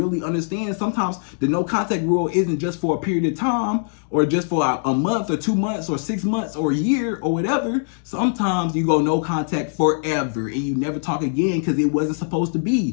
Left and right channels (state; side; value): silent; right; digital silence